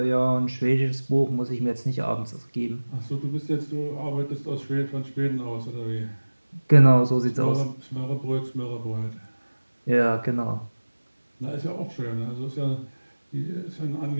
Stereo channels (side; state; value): both; inverted; correlation -1.00